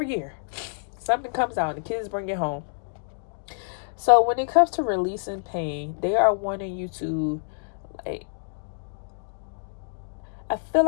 year. Something comes out and the kids bring it home. So when it comes to releasing pain, they are wanting you to, like, I feel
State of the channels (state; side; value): silent; right; digital silence